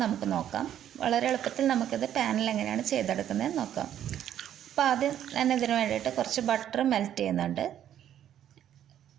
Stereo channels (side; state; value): left; quieter; 10.6 dB